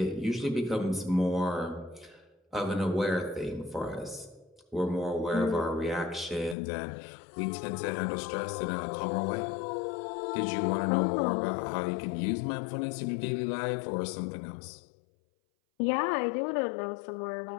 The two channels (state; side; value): drops out; right; at 6.6 s